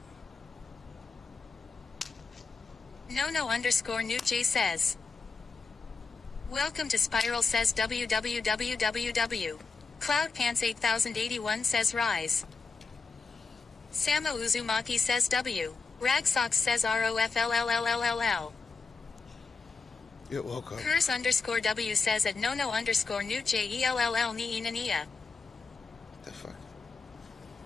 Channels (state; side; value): quieter; right; 4.5 dB